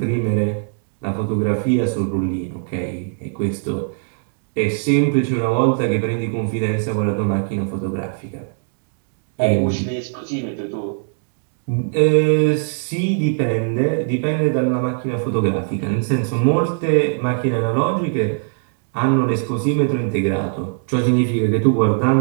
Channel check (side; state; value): left; silent; digital silence